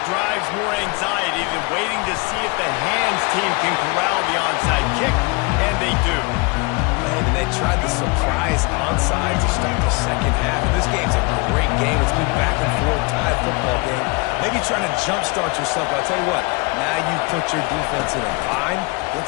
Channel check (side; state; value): right; quieter; 28.6 dB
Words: drives more anxiety than waiting to see if the hands team can corral the onside kick, and they do. Man, and they tried the surprise onside to start the second half. And this game's a great game. It's been back and forth, tied football game. Maybe trying to jumpstart yourself. But I'll tell you what, now you put your defense in a bind.